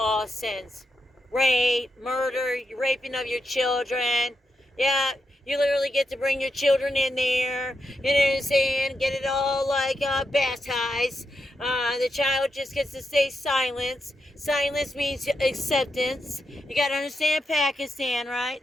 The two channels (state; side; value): normal; both; correlation 0.84